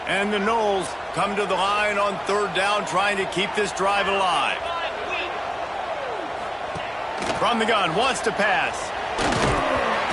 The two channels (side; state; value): both; identical; correlation 1.00